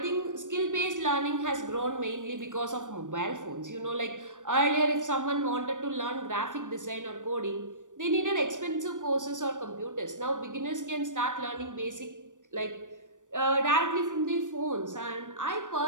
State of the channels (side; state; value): left; late; 0.87 ms